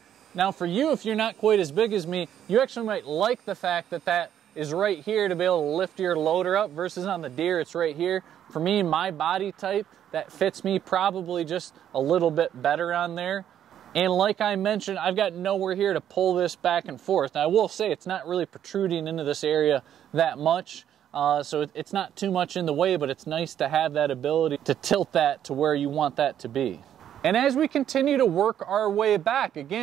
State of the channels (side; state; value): left; quieter; 10.2 dB